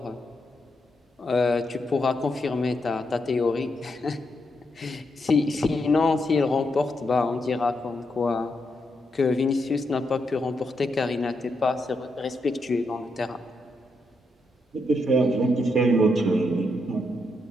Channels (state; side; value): normal; both; correlation 0.81